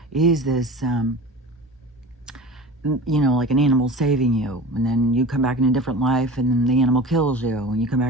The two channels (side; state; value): both; normal; correlation 0.35